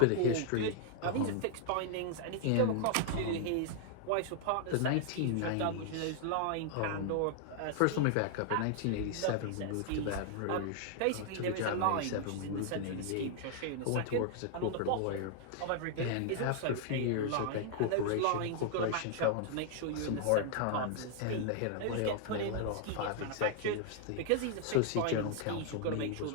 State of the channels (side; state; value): both; different; correlation 0.00